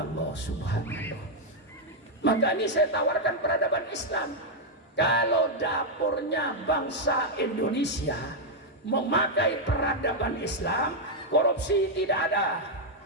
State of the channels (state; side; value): normal; both; correlation -0.02